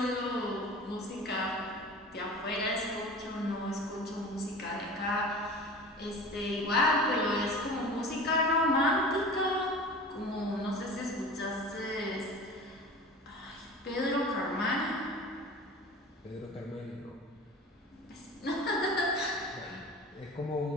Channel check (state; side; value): normal; both; correlation 0.37